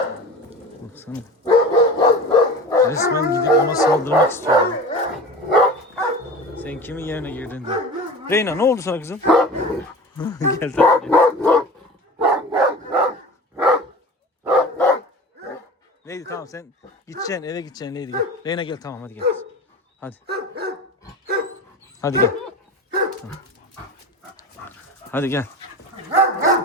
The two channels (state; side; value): normal; both; correlation 0.34